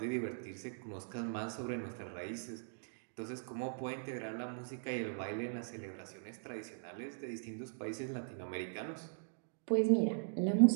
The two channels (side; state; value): left; silent; digital silence